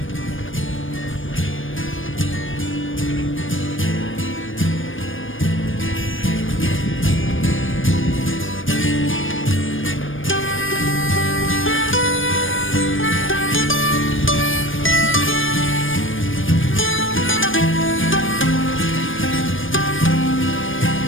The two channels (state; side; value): late; right; 0.58 ms